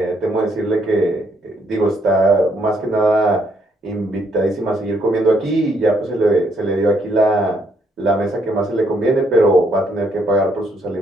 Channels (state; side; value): normal; both; correlation 0.71